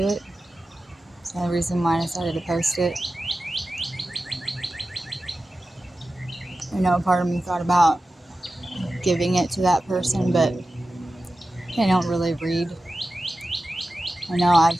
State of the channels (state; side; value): normal; both; correlation 0.94